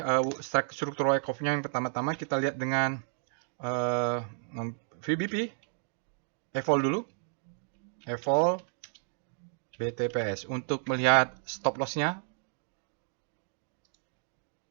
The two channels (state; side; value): silent; left; 57 dB below the other